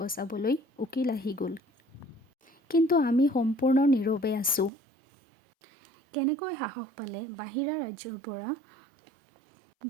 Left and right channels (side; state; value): left; drops out; at 4.7 s